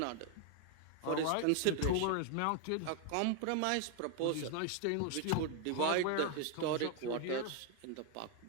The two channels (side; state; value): both; different; correlation 0.00